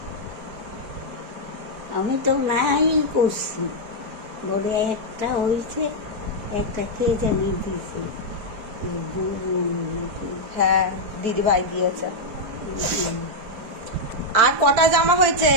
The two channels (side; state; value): left; late; 4.6 ms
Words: আমি তো নাই করছি, বলে একটা হয়েছে, একটা কে জানি দিছে, হ্যাঁ, দিদি ভাই দিয়েছে। আর কটা জামা হয়েছে?